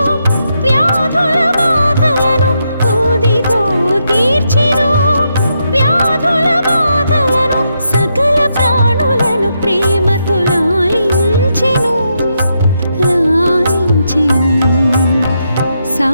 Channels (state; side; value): inverted; both; correlation -0.81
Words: వ్యాధుల బాధలను, ఊదితో తీర్చెను వ్యాధుల బాధలను. సకల ప్రాణులను ప్రేమతో లాలించెను, లాలించెను.